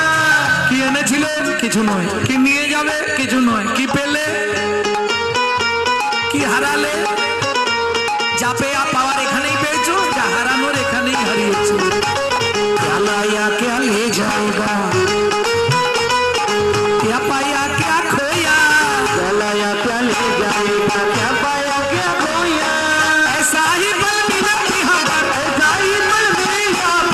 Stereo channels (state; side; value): identical; both; correlation 1.00